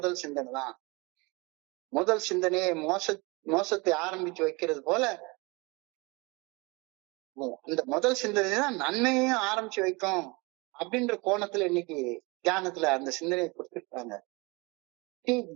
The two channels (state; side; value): quieter; left; 26.6 dB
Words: சிந்தனை தான். முதல் சிந்தனையை மோசத்தை ஆரம்பிச்சு வைக்கிறது போல அந்த முதல் சிந்தனை தான் நன்மையையும் ஆரம்பிச்சு வைக்கும் அப்படின்ற கோணத்துல இன்னைக்கு தியானத்துல அந்த சிந்தனையை கொடுத்துருக்காங்க. Seek